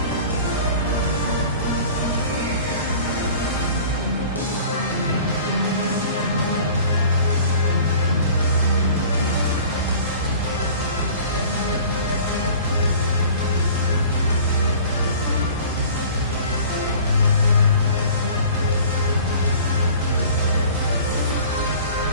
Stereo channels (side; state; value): both; inverted; correlation -0.45